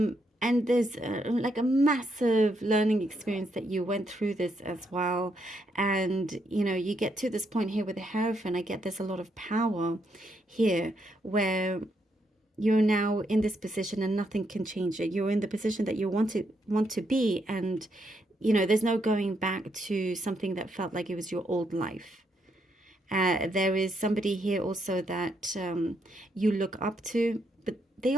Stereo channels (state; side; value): normal; both; correlation 0.77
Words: there's like a massive learning experience that you went through this as well. And, you know, you get to this point here with the Hierophant. I get there's a lot of power here where you're now in this position and nothing can change it. You're in the position that you want to be. And, you know, there's no going back to something that felt like it was your old life. There is somebody here also that you look up to, but they